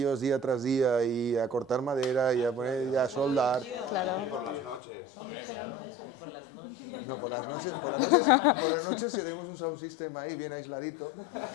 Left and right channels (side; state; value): right; drops out; at 4.8 s